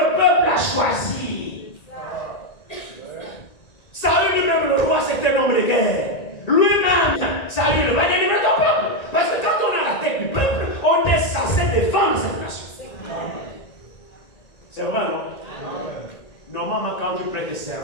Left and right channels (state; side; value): late; right; 1.9 ms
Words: peuple a choisi. Saül lui-même, le roi, c'était un homme de guerre. Lui-même, Saül va délivrer ton peuple. Parce que quand on a la tête du peuple, on est censé défendre cette nation. C'est vrai, non? Normalement, quand tu prêtes